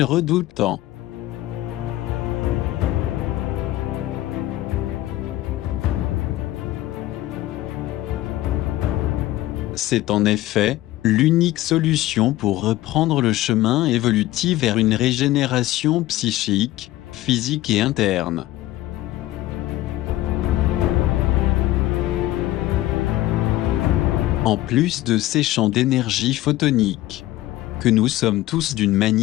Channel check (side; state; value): right; quieter; 15.9 dB